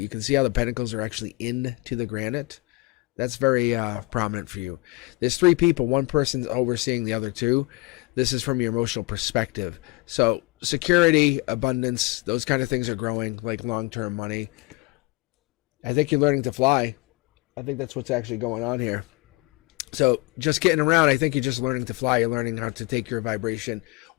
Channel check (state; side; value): quieter; right; 23.4 dB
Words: can see how the pentacles are actually into the granite. That's very prominent for you. There's 3 people. One person's overseeing the other 2. This is from your emotional perspective. So security, abundance, those kind of things are growing, like long-term money. I think you're learning to fly. I think that's what's actually going on here. So just getting around, I think you're just learning to fly. You're learning how to take your vibration,